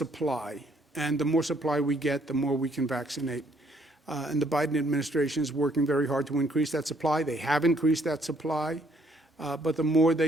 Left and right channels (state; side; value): normal; both; correlation 0.66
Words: And the more supply we get, the more we can vaccinate. And the Biden administration is working very hard to increase that supply. They have increased that supply, but the more